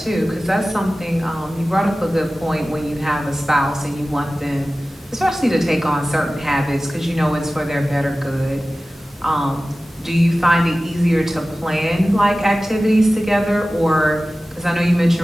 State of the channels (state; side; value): normal; both; correlation 0.96